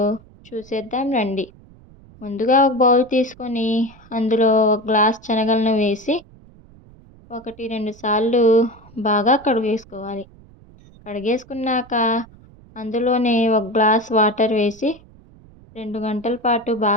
చూసేద్దాం రండి. ముందుగా ఒక బౌల్ తీసుకొని అందులో ఒక గ్లాస్ శనగలను వేసి 1-2 సార్లు బాగా కడిగేసుకోవాలి. కడిగేసుకున్నాక అందులోనే ఒక గ్లాస్ వాటర్ వేసి 2 గంటల పాటు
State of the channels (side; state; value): right; noise; rumble, 24 dB below the sound